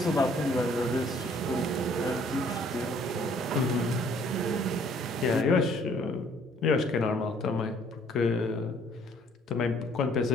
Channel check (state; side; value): normal; both; correlation 0.60